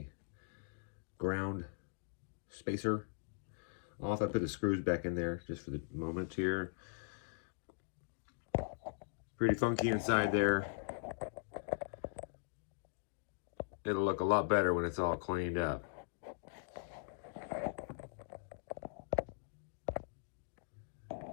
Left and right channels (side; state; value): right; silent; digital silence